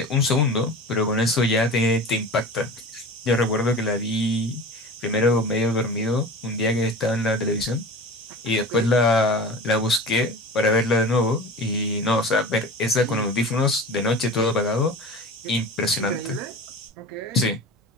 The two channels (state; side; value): normal; both; correlation 0.35